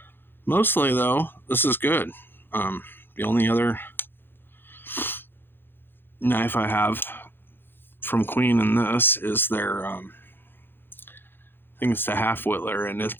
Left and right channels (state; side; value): late; right; 0.10 ms